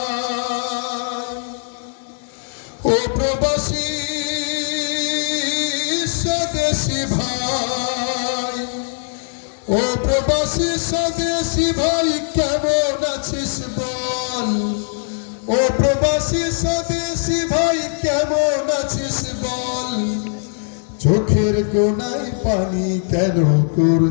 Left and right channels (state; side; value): silent; right; digital silence